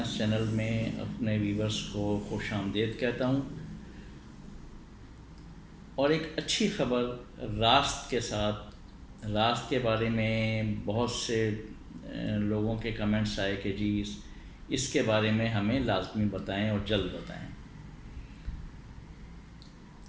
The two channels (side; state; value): both; identical; correlation 1.00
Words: channel میں اپنے ویورز کو خوش آمدید کہتا ہوں، اور ایک اچھی خبر راست کے ساتھ۔ راست کے بارے میں بہت سے لوگوں کے کمنٹس آئے کہ جی اس کے بارے میں ہمیں لازمی بتائیں اور جلد بتائیں۔